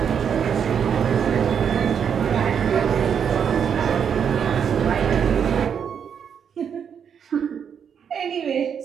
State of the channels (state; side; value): quieter; left; 7.6 dB